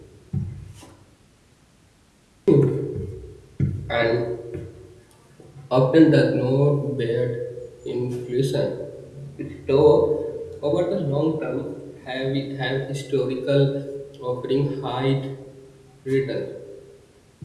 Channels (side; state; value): both; identical; correlation 1.00